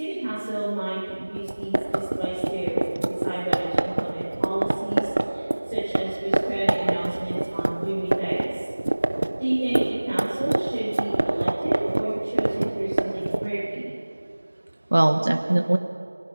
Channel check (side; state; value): both; inverted; correlation -1.00